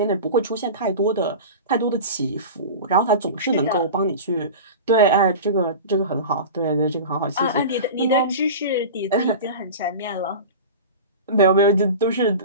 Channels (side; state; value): both; inverted; correlation -0.31